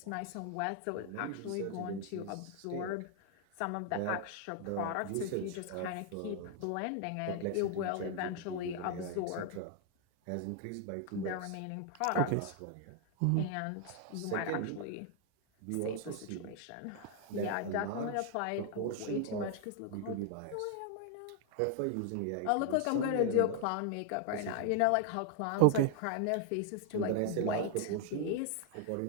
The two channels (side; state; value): both; different; correlation 0.00